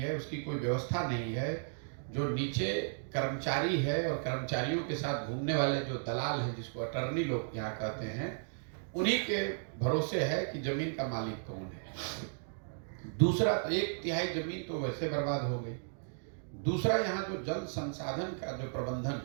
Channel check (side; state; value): left; silent; digital silence